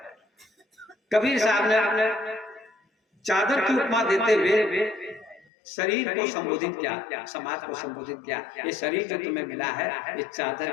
कबीर साहब ने चादर की उपमा देते हुए शरीर को संबोधित किया, समाज को संबोधित किया। ये शरीर जो तुम्हें मिला है ये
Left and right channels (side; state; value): right; drops out; at 5.5 s